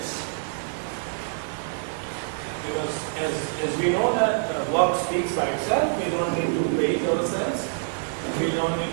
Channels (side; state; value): left; silent; digital silence